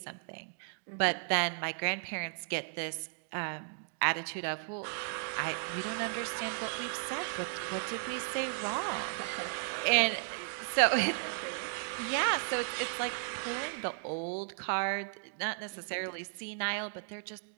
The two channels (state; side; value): silent; left; digital silence